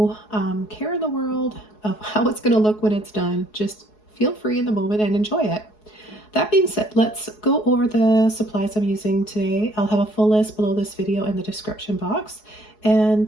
care in the world of how it's going to look when it's done. Just feel free in the moment and enjoy it. That being said, let's go over the supplies I'm using today. I'll have a full list below this video in the description box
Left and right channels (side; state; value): right; late; 4.7 ms